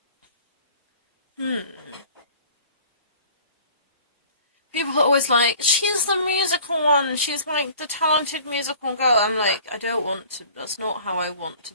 People are always like, she's the musical one, she's, like, the talented musical girl. I'm like, I don't want to, that's not how I want to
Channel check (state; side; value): inverted; both; correlation -0.48